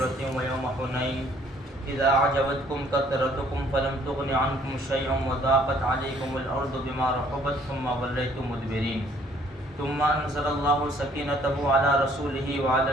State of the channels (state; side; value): normal; both; correlation 0.61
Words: ویوم حنین اذا اعجبتکم کثرتکم فلم تغن عنکم شیئا وضاقت علیکم الارض بما رحبت ثم ولیتم مدبرین ثم انزل اللہ سکینتہ علی رسولہ وعلی